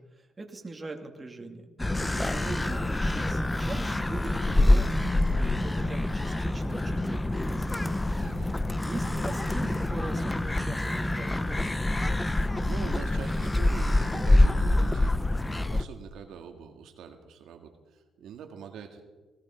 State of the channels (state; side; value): normal; both; correlation 0.97